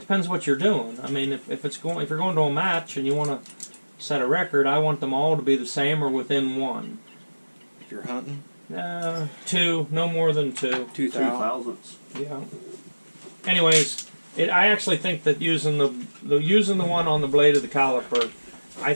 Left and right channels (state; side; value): inverted; both; correlation -1.00